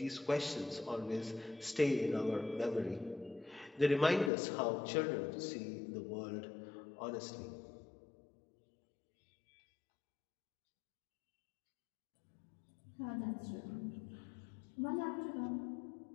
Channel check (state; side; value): drops out; right; at 4.3 s